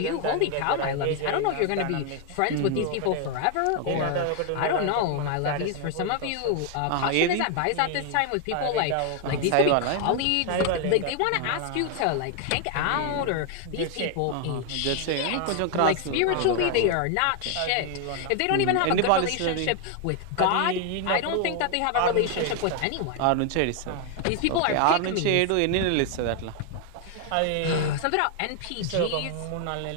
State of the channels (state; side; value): different; both; correlation 0.01